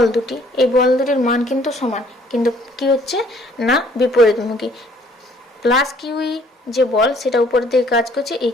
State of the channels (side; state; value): both; normal; correlation 0.60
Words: দুটি, এই বল দুটির মান কিন্তু সমান, কিন্তু কি হচ্ছে না বিপরীতমুখী। প্লাস কিউই যে বল সেটা উপর দিকে কাজ করছে, এই